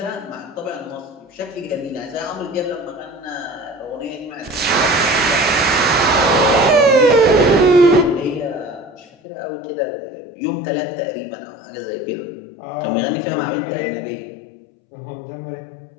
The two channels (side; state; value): right; drops out; at 9.1 s